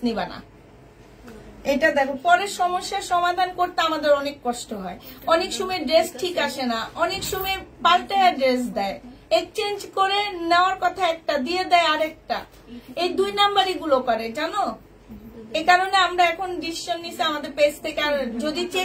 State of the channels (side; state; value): both; identical; correlation 1.00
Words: নিবা না। এটা দেখো, পরের সমস্যার সমাধান করতে আমাদের অনেক কষ্ট হয়। অনেক সময় ড্রেস ঠিক আসে না, অনেক সময় পাল্টায় ড্রেস দেয়, এক্সচেঞ্জ করে নেওয়ার কথা একটা দিয়ে দেয় আরেকটা। এই 2 নাম্বারই গুলো করে, জানো? এই কারণে আমরা এখন ডিসিশন নিছি আমাদের পেজ থেকে, আর যদি